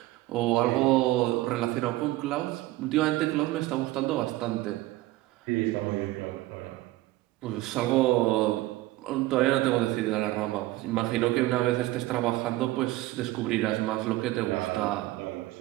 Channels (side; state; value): left; quieter; 17.8 dB